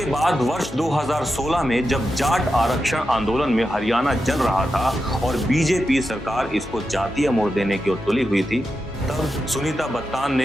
बाद वर्ष 2016 में जब जाट आरक्षण आंदोलन में हरियाणा जल रहा था और बीजेपी सरकार इसको जातीय मोड़ देने की ओर तुली हुई थी, तब सुनीता बत्तान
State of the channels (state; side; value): normal; both; correlation 0.89